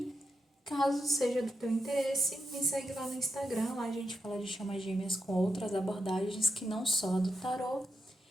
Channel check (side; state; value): both; normal; correlation 0.85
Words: caso seja do teu interesse, me segue lá no Instagram. Lá a gente fala de chamas gêmeas com outras abordagens que não só a do tarô.